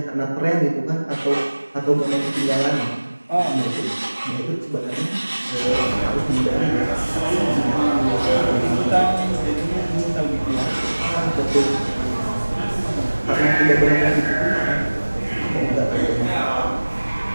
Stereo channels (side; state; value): both; inverted; correlation -1.00